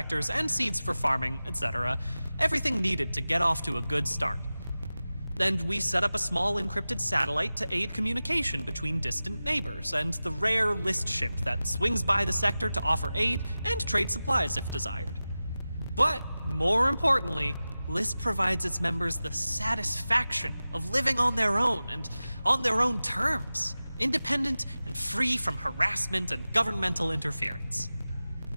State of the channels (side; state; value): both; inverted; correlation -0.96